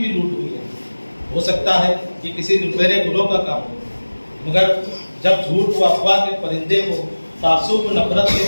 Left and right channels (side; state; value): both; inverted; correlation -1.00